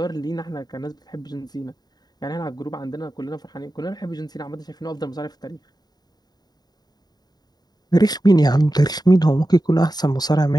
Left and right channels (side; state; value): right; late; 0.20 ms